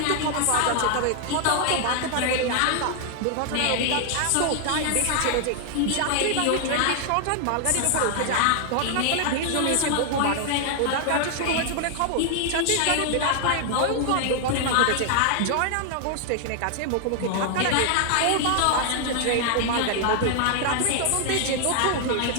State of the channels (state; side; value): different; both; correlation 0.00